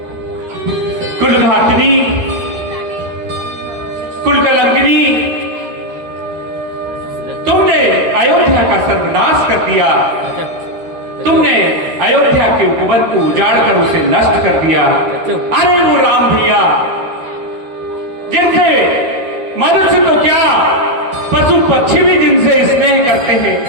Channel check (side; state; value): left; late; 12 ms